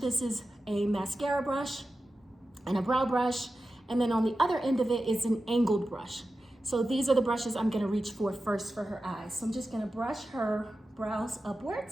is a mascara brush and a brow brush. And then on the other end of it is an angled brush. So these are the brushes I'm gonna reach for first for her eyes. So I'm just gonna brush her brows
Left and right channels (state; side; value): normal; both; correlation 0.93